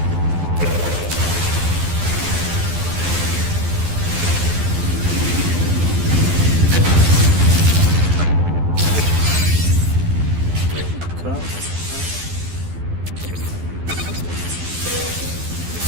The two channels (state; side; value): late; left; 12 ms